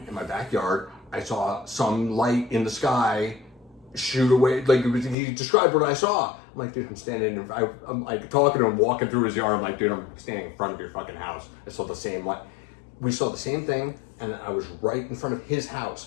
in my backyard. I saw some light in the sky shoot away. Like, he described what I saw. I'm like, dude, I'm standing in, I'm like talking to him, walking through his yard. I'm like, dude, I'm standing in front of your fucking house. I saw the same light. We saw the same thing, and I was right in front of his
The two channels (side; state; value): right; drops out; at 5.2 s